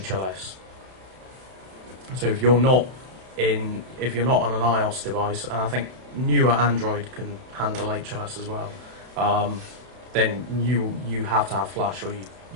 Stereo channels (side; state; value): left; late; 32 ms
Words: So if you're not on an iOS device, and I think newer Android can handle HLS as well, then you have to have Flash, or